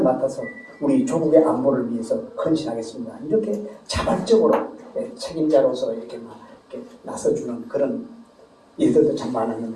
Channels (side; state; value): both; identical; correlation 1.00